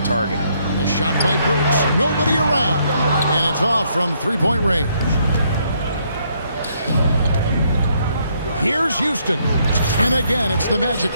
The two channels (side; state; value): both; inverted; correlation -0.71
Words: targeted. A shot by Burks. Nobody around. And it's off from three-point range. Here's Houston. And again, it's the Magic